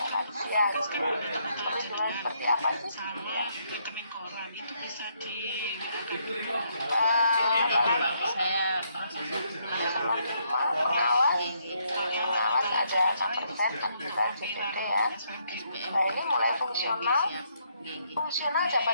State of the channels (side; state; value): both; inverted; correlation -0.73